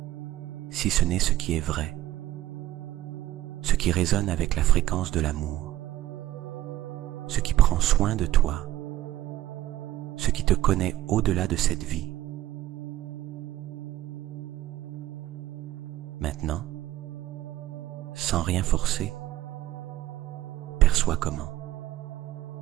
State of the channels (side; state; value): left; quieter; 14.5 dB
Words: si ce n'est ce qui est vrai, ce qui résonne avec la fréquence de l'amour, ce qui prend soin de toi, ce qui te connaît au-delà de cette vie. Maintenant, sans rien forcer, perçois comment,